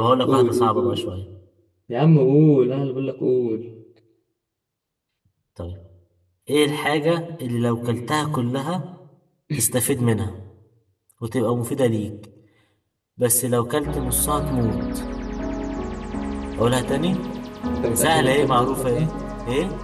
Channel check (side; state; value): both; identical; correlation 1.00